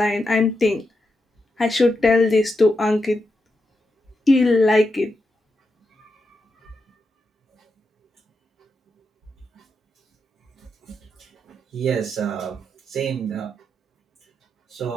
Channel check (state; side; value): normal; both; correlation 0.85